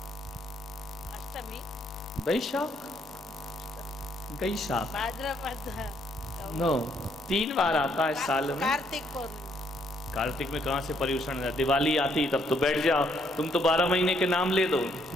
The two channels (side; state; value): both; normal; correlation 0.70